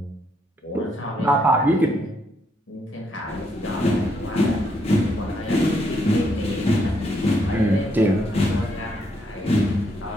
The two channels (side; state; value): both; normal; correlation 0.75